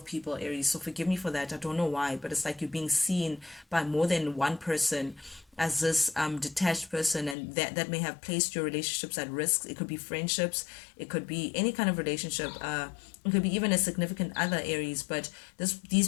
people, Aries, so forgive me for that. I don't know why, but it's like you're being seen by more than one person as this detached person, and that may have placed your relationships at risk. It could be friendships, it could be any kind of relationship, it could be even a significant other, Aries. But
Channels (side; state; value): right; drops out; at 7.4 s